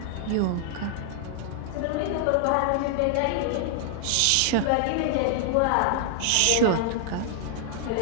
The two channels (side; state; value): both; different; correlation 0.00